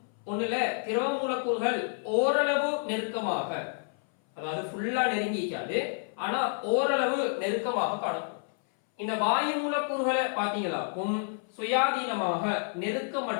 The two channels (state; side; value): silent; right; 58 dB below the other